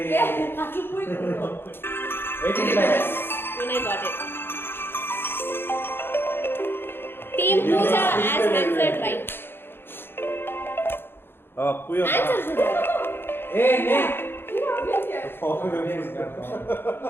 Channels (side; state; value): right; late; 0.10 ms